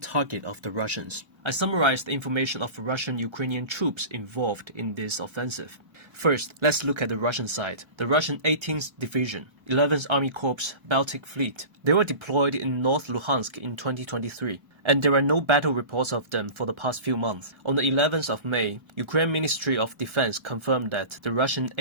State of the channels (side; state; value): left; late; 1.3 ms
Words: of the Russians. I summarized the information of Russian-Ukrainian troops involved in this offensive. First, let's look at the Russian side. The Russian 18th Division, 11th Army Corps, Baltic Fleet. They were deployed in North Luhansk in 2023, and there are no battle reports of them for the past few months. On the 11th of May, Ukraine Ministry of Defense confirmed that the Russian